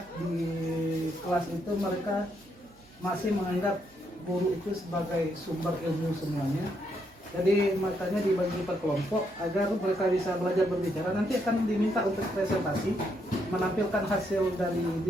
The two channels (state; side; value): normal; both; correlation 0.76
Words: di kelas itu mereka masih menganggap guru itu sebagai sumber ilmu semuanya. Jadi makanya dibagi per kelompok agar mereka bisa belajar berbicara. Nanti akan diminta untuk presentasi, menampilkan hasil dari